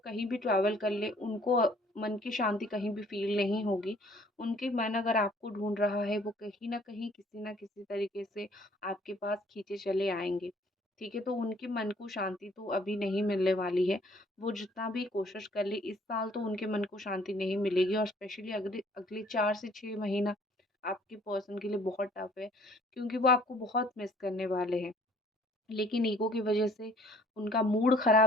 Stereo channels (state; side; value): normal; both; correlation 0.58